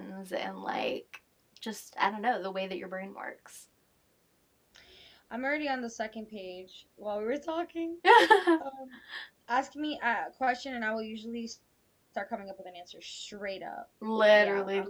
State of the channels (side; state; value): both; identical; correlation 1.00